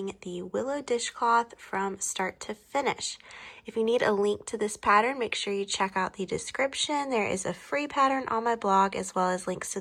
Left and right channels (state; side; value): identical; both; correlation 1.00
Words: the Willow Dishcloth from start to finish. If you need a link to this pattern, make sure you check out the description. There is a free pattern on my blog as well as links to